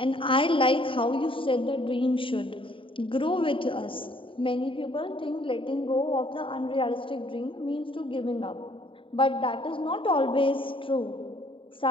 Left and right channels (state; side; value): late; right; 0.25 ms